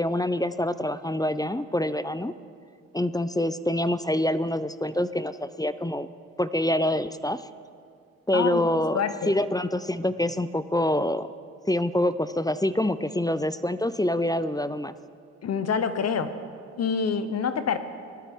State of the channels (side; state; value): both; normal; correlation 0.63